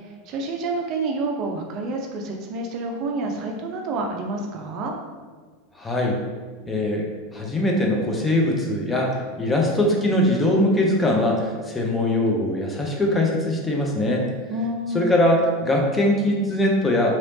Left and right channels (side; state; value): both; normal; correlation 0.33